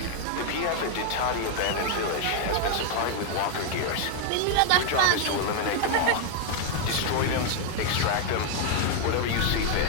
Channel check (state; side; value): different; both; correlation 0.00